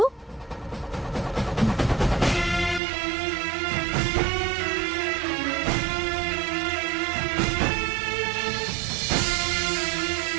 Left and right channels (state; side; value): drops out; left; at 2.8 s